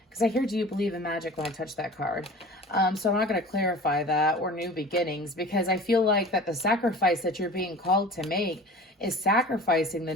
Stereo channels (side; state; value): both; normal; correlation 0.40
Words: because I hear, do you believe in magic when I touch that card? So I'm not going to clarify that, or new beginnings, because I feel like that the sacrifice that you're being called to make is sacrificing the